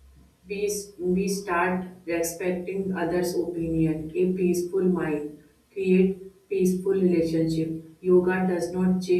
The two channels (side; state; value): both; identical; correlation 1.00